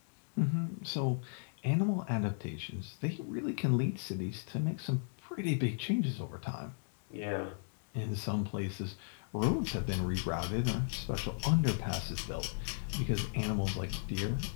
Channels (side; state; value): right; silent; digital silence